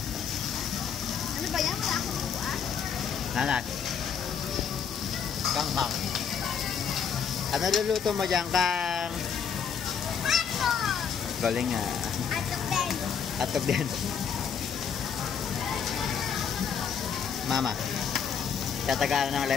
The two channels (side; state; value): right; quieter; 7.2 dB